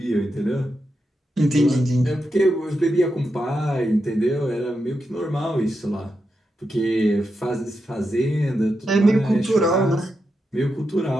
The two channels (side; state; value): both; normal; correlation 0.87